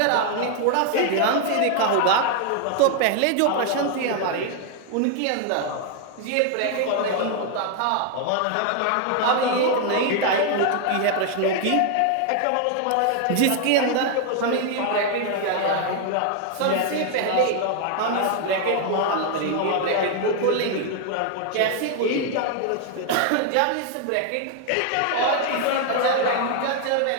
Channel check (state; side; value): different; both; correlation 0.00